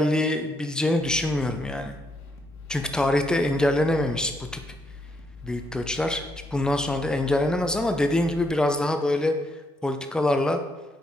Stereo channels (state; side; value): normal; both; correlation 0.77